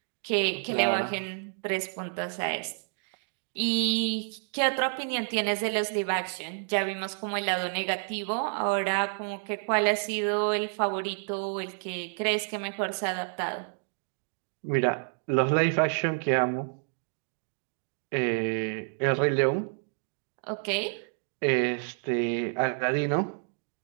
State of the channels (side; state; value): left; silent; 58 dB below the other